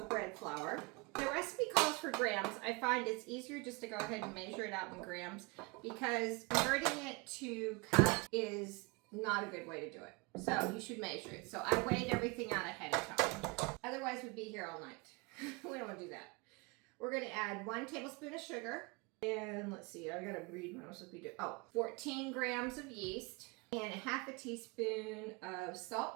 bread flour. The recipe calls for grams. I find it's easier just to go ahead and measure it out in grams because converting it to cup is not a good way to do it. So you should measure it. So I weighed everything out ahead of time. Otherwise we'd be here all night. We don't want to do that. We're gonna add 1 tablespoon of sugar. And let's see, I gotta read what I'm supposed to be doing. 14 grams of yeast and a half a teaspoon of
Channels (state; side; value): quieter; left; 27.6 dB